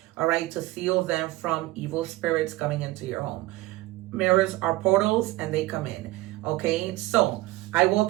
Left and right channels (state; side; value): quieter; left; 19.0 dB